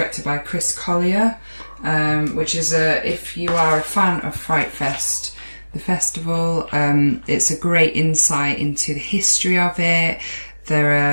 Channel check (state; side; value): inverted; both; correlation -1.00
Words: by Chris Collier, which is if you are a fan of FrightFest, the festival, it's a great insight into the history of it. There